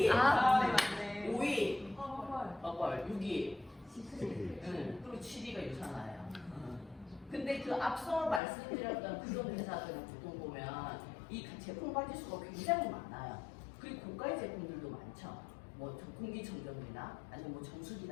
맞네. 5위 허벌, 6위 그리고 7위가 유산화예요. 근데 그 앞서 말씀드렸던 그런 회사들은 보통 보면 이 제품 가지수가 굉장히 많아요. 그리고 고가의 제품들도 많죠. 뭐 공기청정기나 아니면 뭐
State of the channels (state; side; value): drops out; right; at 8.4 s